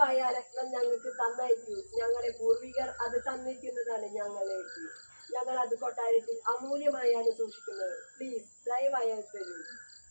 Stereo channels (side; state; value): both; inverted; correlation -1.00